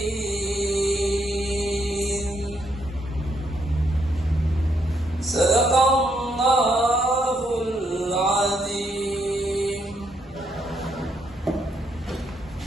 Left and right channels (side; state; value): both; normal; correlation 0.75